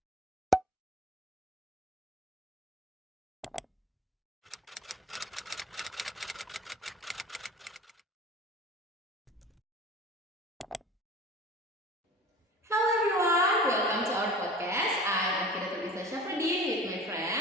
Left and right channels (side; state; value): both; normal; correlation 0.39